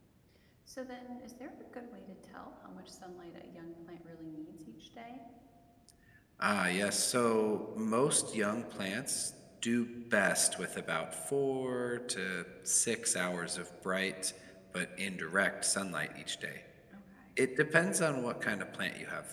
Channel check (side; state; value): both; identical; correlation 1.00